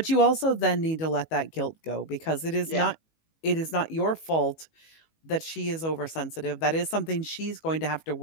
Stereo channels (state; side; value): late; right; 19 ms